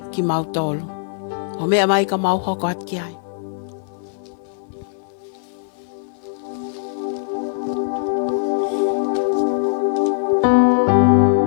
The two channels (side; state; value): right; silent; digital silence